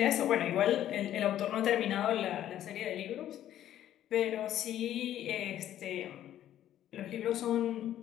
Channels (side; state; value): right; quieter; 11.9 dB